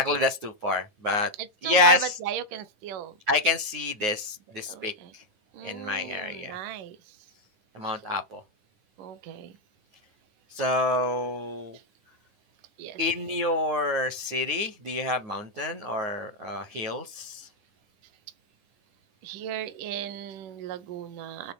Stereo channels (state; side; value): late; left; 9.5 ms